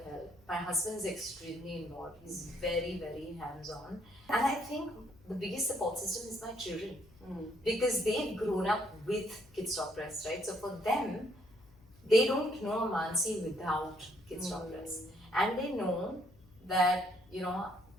help. My husband is extremely involved. He's very, very hands-on. And I think the biggest support system is my children. Because they've grown up with Kidsstoppress, right? So for them, they don't know a Mansi without Kidsstoppress. And they know that,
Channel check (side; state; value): left; noise; hum, 26 dB below the sound